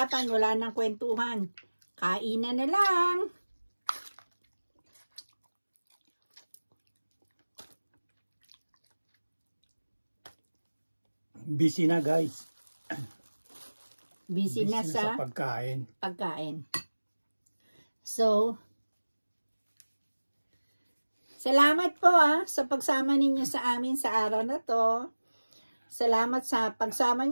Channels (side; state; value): both; inverted; correlation -1.00